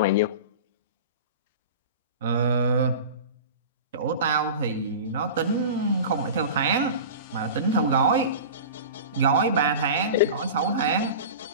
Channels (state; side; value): inverted; both; correlation -0.33